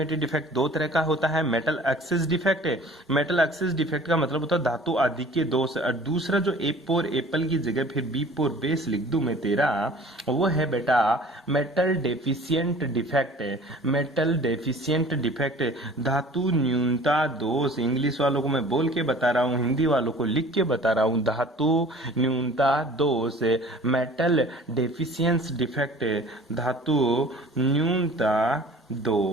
डिफेक्ट दो तरह का होता है। मेटल एक्सिस डिफेक्ट है, मेटल एक्सिस डिफेक्ट का मतलब होता है धातु आधिक्य दोष। और दूसरा जो ए पोर एप्पल की जगह फिर बी पोर बेस लिख दूं मैं तेरा, वो है बेटा metal deficient defect. Metal deficient defect धातु न्यूनता दोष। इंग्लिश वालों को मैं बोल के बता रहा हूँ, हिंदी वालों को लिख के बता रहा हूँ। धातु न्यूनता दोष, मेटल डेफिशिएंस डिफेक्ट, धातु न्यूनता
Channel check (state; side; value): normal; both; correlation 0.46